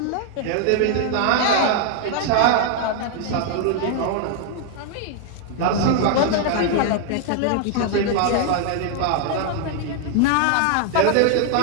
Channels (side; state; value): both; different; correlation 0.00